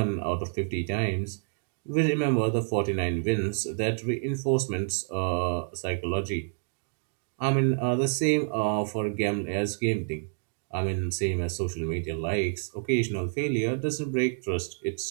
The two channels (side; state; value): left; silent; digital silence